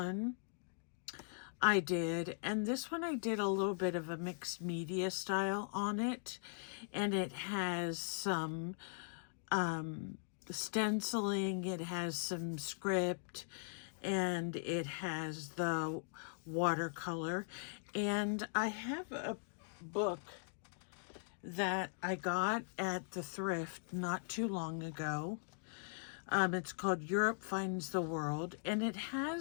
I did, and this one I did a little bit of a mixed media style on it, and it has some stenciling, it has some script, and it has the watercolor. And I have a book that I got at the thrift not too long ago. It's called Europe Finds the World, and it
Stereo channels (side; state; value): right; silent; digital silence